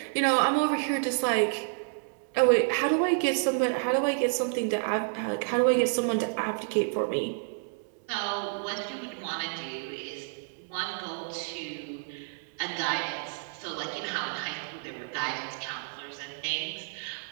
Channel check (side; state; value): left; silent; 58 dB below the other